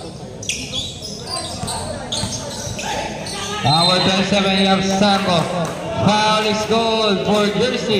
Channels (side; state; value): both; identical; correlation 1.00